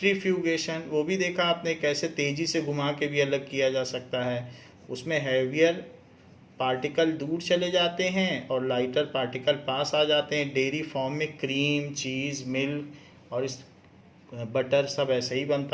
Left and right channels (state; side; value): identical; both; correlation 1.00